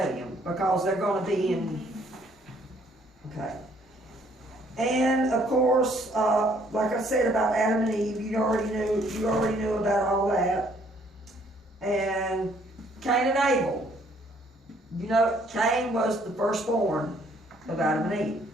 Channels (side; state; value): both; normal; correlation 0.64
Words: them because they're going to be in. Okay. And of course, like I said about Adam and Eve, you already knew about all that. And Cain and Abel. Cain was the firstborn of Adam and Eve.